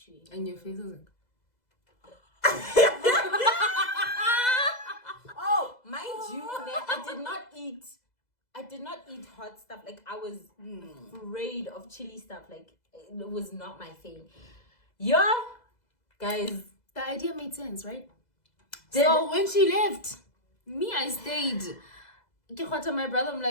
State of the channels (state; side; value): late; right; 2.0 ms